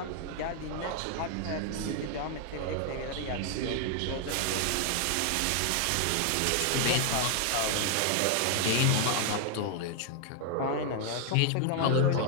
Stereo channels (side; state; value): both; different; correlation 0.00